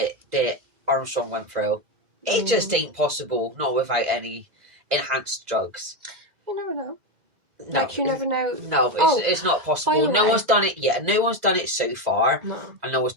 that Armstrong went through. It just ain't possible, not without any enhanced drugs. You never know. No, Like, you never know. No, it's not possible. No one's done it yet. No one's done it so far. No. And no one's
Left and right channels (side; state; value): left; late; 1.9 ms